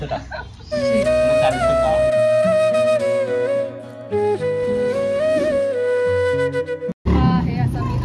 टाक. हा हे असा मी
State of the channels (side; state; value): both; identical; correlation 1.00